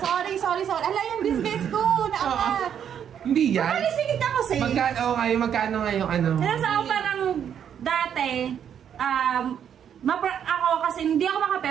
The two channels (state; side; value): quieter; left; 8.8 dB